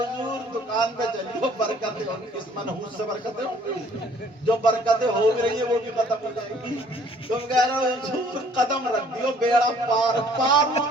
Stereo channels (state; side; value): normal; both; correlation 0.58